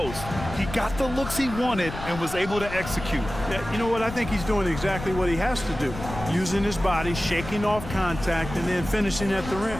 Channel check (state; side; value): noise; left; rumble, 10 dB below the sound